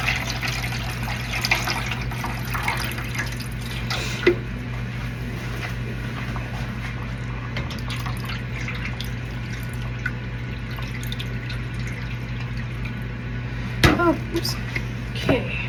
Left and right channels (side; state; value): both; identical; correlation 1.00